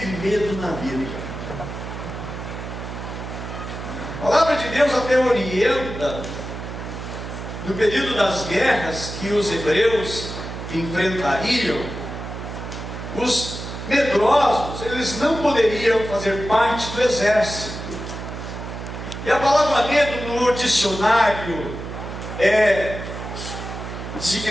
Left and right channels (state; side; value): noise; right; hum, 8 dB below the sound